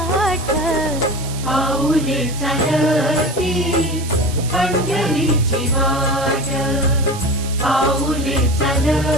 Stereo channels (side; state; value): right; noise; hiss, 13 dB below the sound